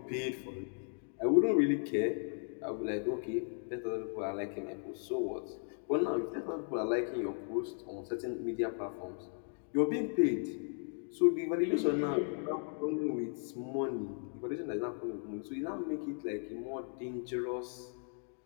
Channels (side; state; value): right; silent; 54 dB below the other